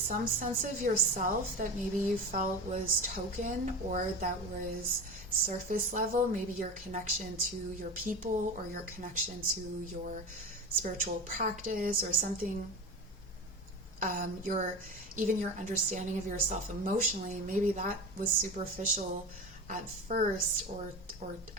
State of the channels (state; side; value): normal; both; correlation 0.27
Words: sense of yourself that maybe you felt was token or that was surface level, maybe your connection to your people or your connection to your spiritual practice or something, even your understanding of yourself emotionally, maybe that was superficial at first, or